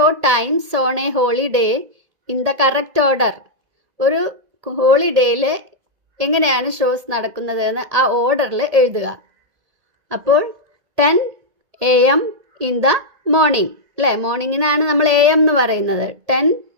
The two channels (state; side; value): late; left; 1.8 ms